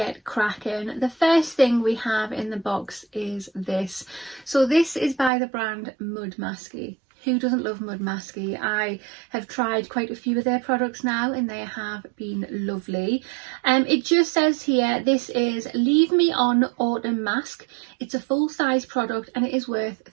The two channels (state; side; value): drops out; left; at 5.3 s